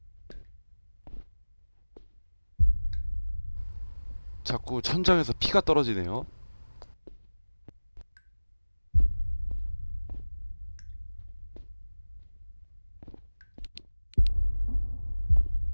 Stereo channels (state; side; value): inverted; both; correlation -1.00